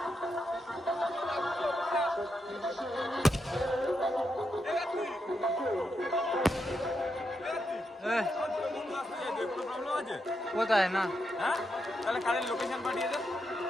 কোথায় না হ্যাঁ তাহলে কারেন্ট লোকেশন পাঠিয়ে দে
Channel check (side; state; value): both; normal; correlation 0.83